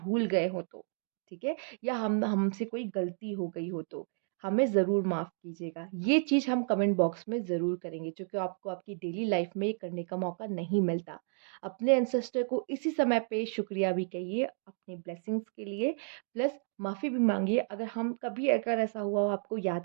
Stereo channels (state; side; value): silent; left; 56 dB below the other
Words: गए हो तो। ठीक है, या हमसे कोई गलती हो गई हो तो हमें ज़रूर माफ़ कीजिएगा। ये चीज़ हम कमेंट बॉक्स में ज़रूर करेंगे, क्योंकि आपको आपकी डेली लाइफ में ये करने का मौका नहीं मिलता। अपने एंसेस्टर को इसी समय पे शुक्रिया भी कहिए अपनी ब्लेसिंग्स के लिए, प्लस माफ़ी भी मांगिए अगर हम कभी अगर ऐसा हुआ हो आपको